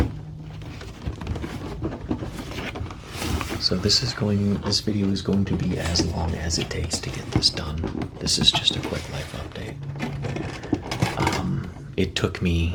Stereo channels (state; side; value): identical; both; correlation 1.00